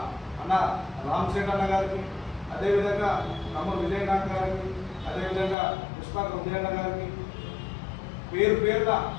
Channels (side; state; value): right; drops out; at 5.6 s